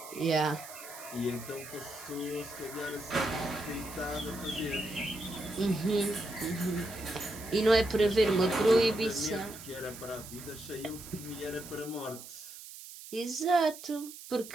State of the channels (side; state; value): right; noise; hiss, 14 dB below the sound